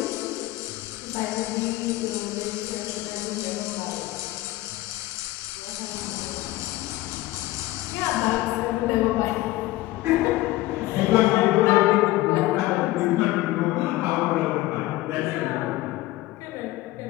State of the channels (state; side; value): quieter; right; 17.7 dB